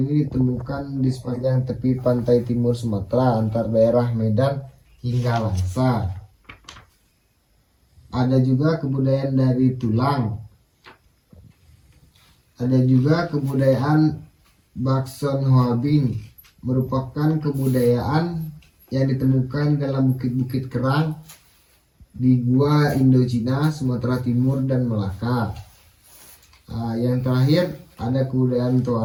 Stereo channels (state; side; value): identical; both; correlation 1.00